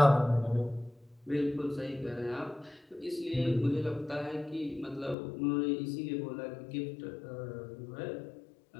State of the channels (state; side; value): drops out; right; at 5.2 s